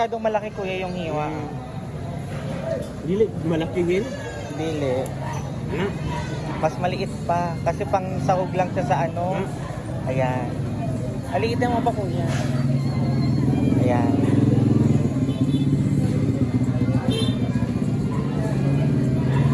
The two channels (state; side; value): identical; both; correlation 1.00